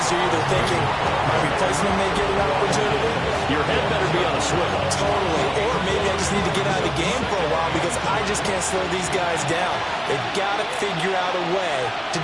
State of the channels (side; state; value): both; identical; correlation 1.00